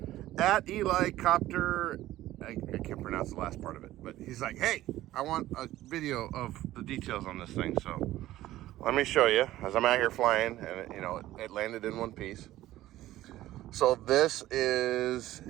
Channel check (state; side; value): quieter; left; 15.0 dB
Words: at Eli Copter. I can't pronounce the last part of it, but he's like, hey, I want a video of the details on this thing. So let me show you as I'm out here flying, and it landed in one piece. So this is